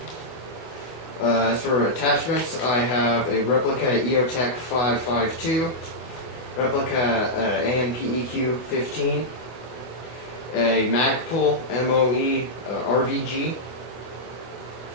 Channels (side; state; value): right; late; 24 ms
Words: As for attachments, I have a replica EOTech 552, replica ANP EQ15, a Magpul MOE RVG,